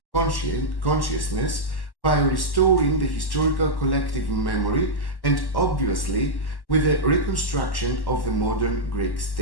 consciousness by restoring the historical collective memory and obviously with the reconstruction of the modern Greek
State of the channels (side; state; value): right; late; 1.1 ms